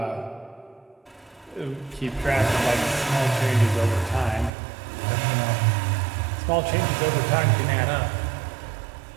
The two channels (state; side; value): drops out; left; at 4.5 s